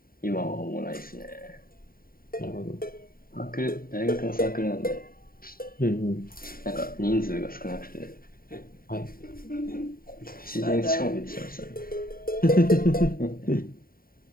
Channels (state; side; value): late; right; 0.43 ms